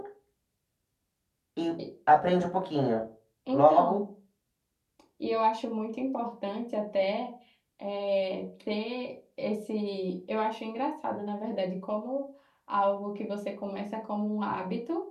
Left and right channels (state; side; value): identical; both; correlation 1.00